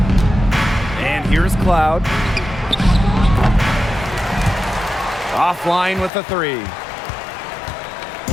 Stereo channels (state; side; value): drops out; right; at 6.1 s